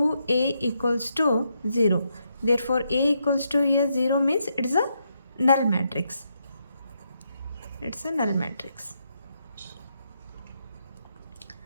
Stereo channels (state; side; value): inverted; both; correlation -0.80